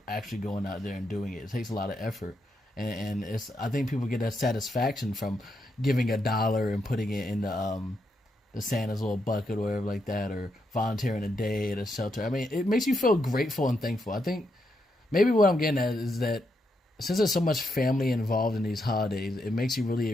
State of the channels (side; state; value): both; normal; correlation 0.81